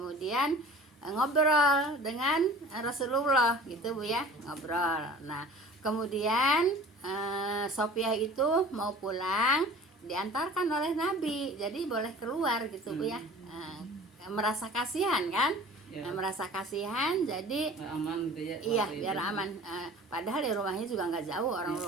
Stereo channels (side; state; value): both; normal; correlation 0.44